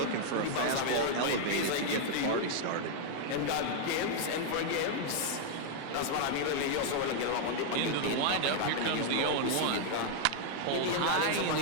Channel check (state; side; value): different; both; correlation 0.00